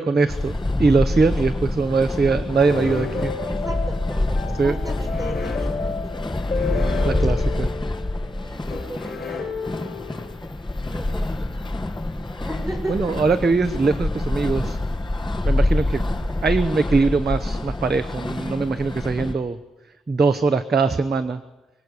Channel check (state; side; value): normal; both; correlation 0.86